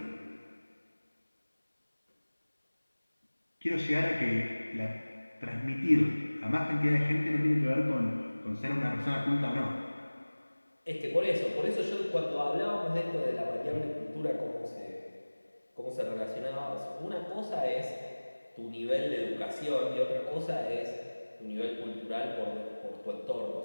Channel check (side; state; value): both; inverted; correlation -1.00